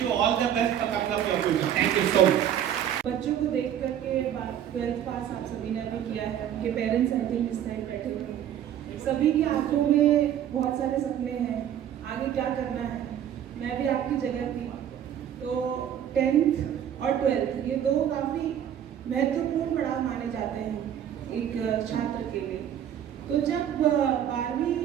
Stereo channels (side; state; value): left; quieter; 10.1 dB